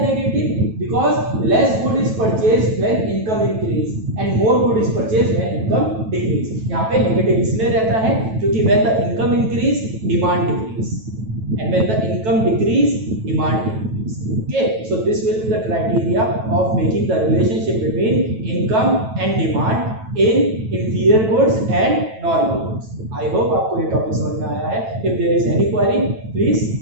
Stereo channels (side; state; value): left; late; 9.1 ms